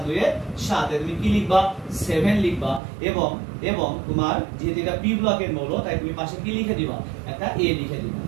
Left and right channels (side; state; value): left; drops out; at 2.8 s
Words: 2 এ 7। তুমি কি লিখবা, 7 লিখবা এবং এবং তোমার যেহেতু এটা পি ব্লকের মৌল, তাই তুমি পাশে কি লিখে দিবা, একটা এ লিখে দিবা।